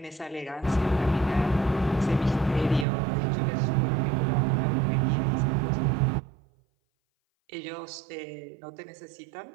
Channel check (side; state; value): left; drops out; at 2.9 s